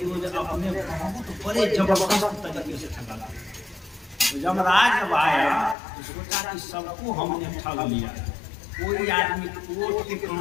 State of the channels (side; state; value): right; drops out; at 5.8 s